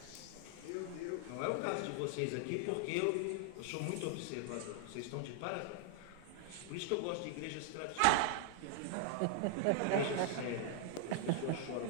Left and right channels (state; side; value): different; both; correlation 0.00